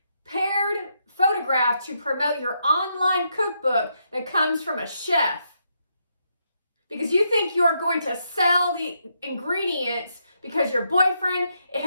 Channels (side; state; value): both; inverted; correlation -0.79